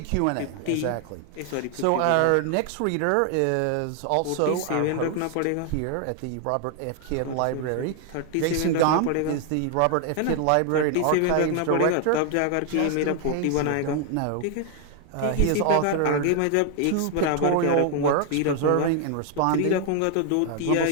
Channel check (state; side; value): different; both; correlation 0.00